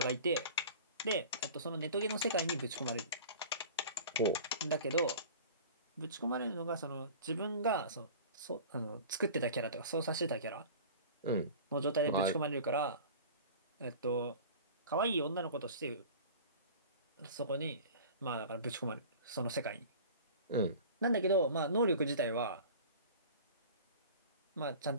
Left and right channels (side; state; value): both; inverted; correlation -0.40